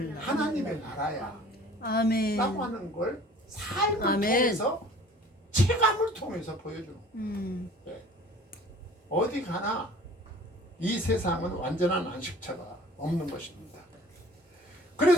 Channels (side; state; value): both; normal; correlation 0.48